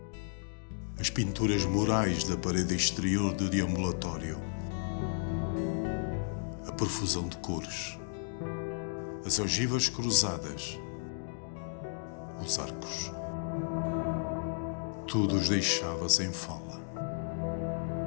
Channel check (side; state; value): right; silent; digital silence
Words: as pinturas murais da parede exterior do deambulatório, a profusão de cores, as ogivas cruzadas, os arcos. Tudo os deixava sem fala.